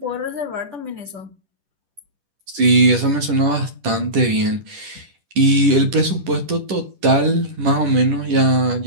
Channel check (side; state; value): left; late; 10 ms